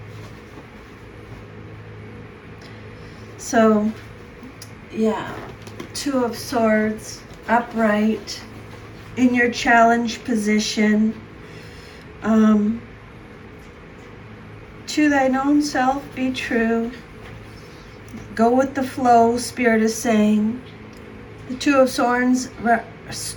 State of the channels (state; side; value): identical; both; correlation 1.00